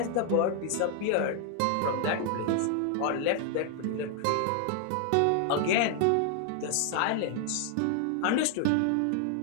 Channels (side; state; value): both; different; correlation 0.00